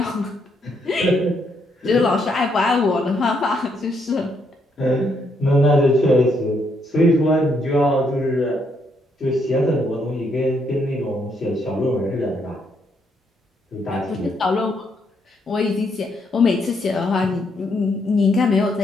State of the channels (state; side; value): normal; both; correlation 0.75